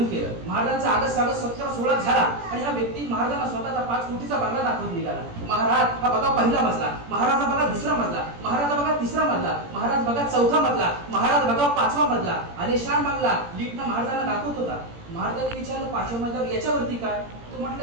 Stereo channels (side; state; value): left; late; 17 ms